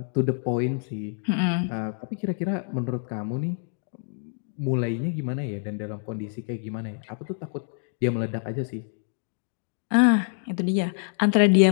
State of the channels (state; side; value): silent; right; digital silence